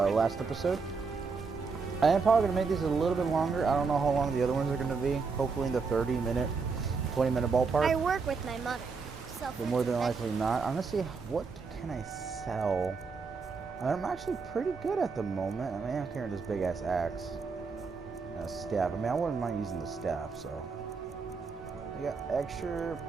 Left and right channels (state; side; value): quieter; left; 4.9 dB